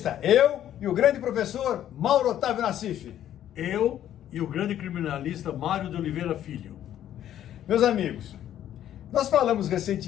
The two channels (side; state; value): right; quieter; 11.3 dB